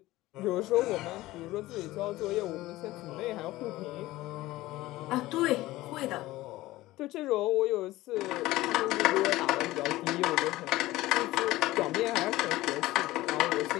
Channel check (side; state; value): right; quieter; 17.5 dB